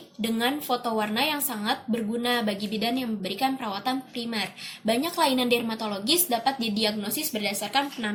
dengan foto warna yang sangat berguna bagi bidan yang memberikan perawatan primer. Banyak kelainan dermatologis dapat didiagnosis berdasarkan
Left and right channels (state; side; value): identical; both; correlation 1.00